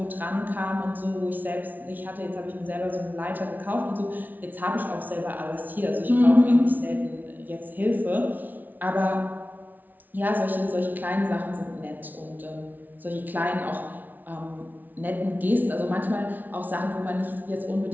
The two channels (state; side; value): late; left; 0.082 ms